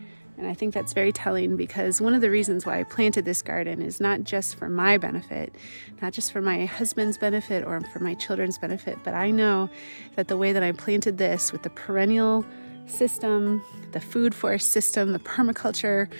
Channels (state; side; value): inverted; both; correlation -1.00